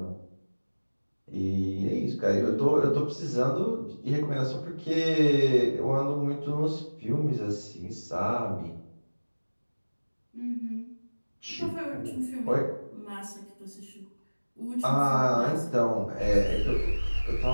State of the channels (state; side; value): inverted; both; correlation -1.00